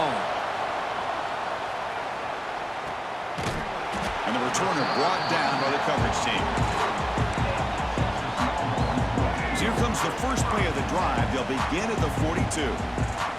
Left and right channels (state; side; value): identical; both; correlation 1.00